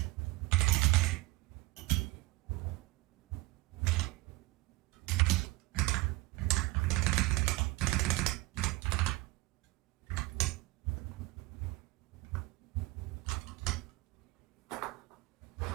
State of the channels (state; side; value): quieter; left; 21.1 dB